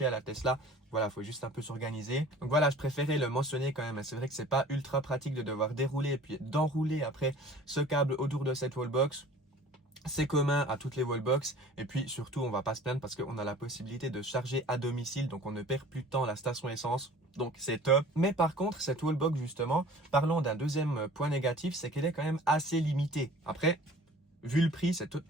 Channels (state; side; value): normal; both; correlation 0.46